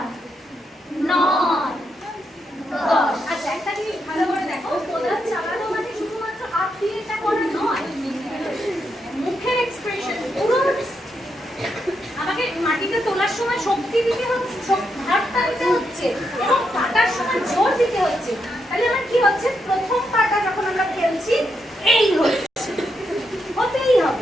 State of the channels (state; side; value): normal; both; correlation 0.81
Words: 9 10। আচ্ছা, একটা জিনিস ভালো করে দেখো, কোদাল চালানো মানে শুধুমাত্র হাত দিয়ে এটা করা নয়, মুখের এক্সপ্রেশন পুরো। আমাকে মাটিতে তোলার সময় শক্তি দিতে হচ্ছে, হাতটা দিতে হচ্ছে, এবং কাটার সময় জোর দিতে হচ্ছে। তাহলে আমার কি হচ্ছে? প্রথম পাটা যখন আমরা খেলছি, এই হচ্ছে, হতেই